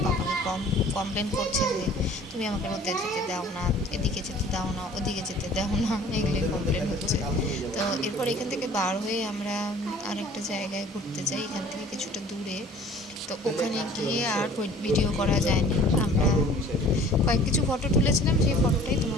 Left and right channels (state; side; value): normal; both; correlation 0.49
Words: পাপাকে কমপ্লেন করছে যে তুমি আমাকে রোদে যেতে দাও না, এদিকে যেতে দাও না, ওদিকে যেতে দাও না, এগুলোই কমপ্লেন হচ্ছে। তো এরপর এখান থেকে বার হয়ে আমরা আরেকটা জায়গায় ঘুরতে যাই, এখান থেকে কিছুটা দূরে। তো ওখানে গিয়ে আর ভিডিও করা যায়নি, আমরা কিছু ফটো তুলেছিলাম, সেই ফটোটাই